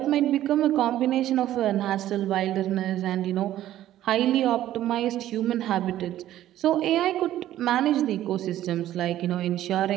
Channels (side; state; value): left; quieter; 13.1 dB